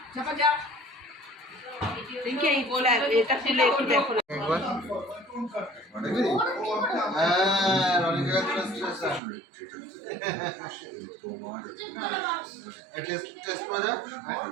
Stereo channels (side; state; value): left; drops out; at 9.2 s